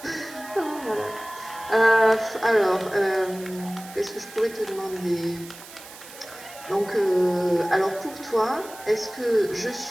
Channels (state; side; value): noise; right; hiss, 17 dB below the sound